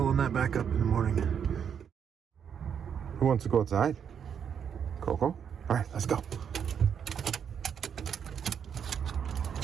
that back up in the morning. Who wants to go outside? Coco? All right, let's go.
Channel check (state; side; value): quieter; left; 7.8 dB